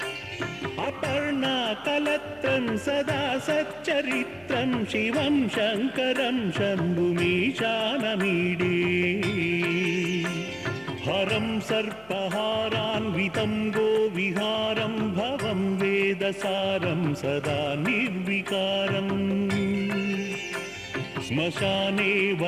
अपर्णाकलत्रं सदा सच्चरित्रं शिवं शङ्करं शम्भुमीशानमीडे। हरं सर्पहारान्वितं गोविहारं भवं वेदसारं सदा निर्विकारम् श्मशाने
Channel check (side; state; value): left; noise; hum, 28 dB below the sound